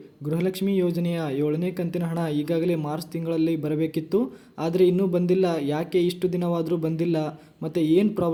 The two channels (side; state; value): both; identical; correlation 1.00